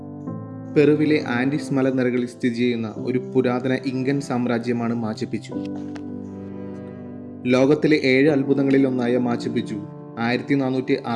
പെറുവിലെ ആൻഡീസ് മലനിരകളിൽ സ്ഥിതി ചെയ്യുന്ന ഒരു പുരാതന ഇങ്കൻ സാമ്രാജ്യമാണ് മാച്ചു പിച്ചു. ലോകത്തിലെ 7 അത്ഭുതങ്ങളിൽ ഒന്നായ മാച്ചു പിച്ചു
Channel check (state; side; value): identical; both; correlation 1.00